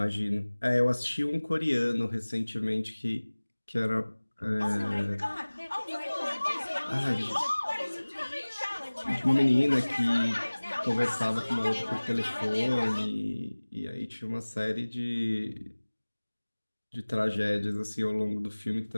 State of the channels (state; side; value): inverted; both; correlation -1.00